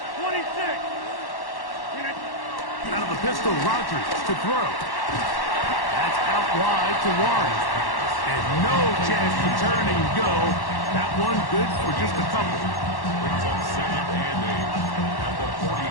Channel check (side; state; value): right; late; 1.1 ms